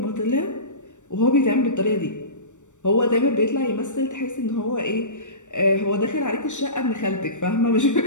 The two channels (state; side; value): late; right; 0.85 ms